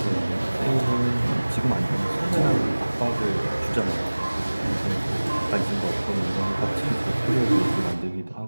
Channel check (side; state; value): both; inverted; correlation -1.00